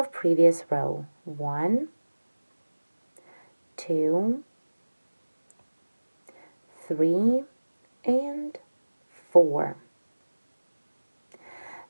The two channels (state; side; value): inverted; both; correlation -1.00